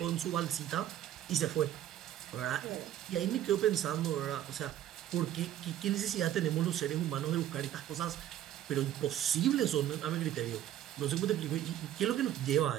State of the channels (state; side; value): quieter; left; 11.9 dB